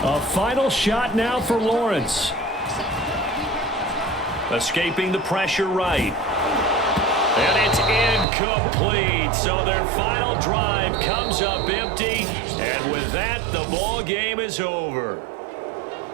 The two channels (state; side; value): drops out; left; at 8.2 s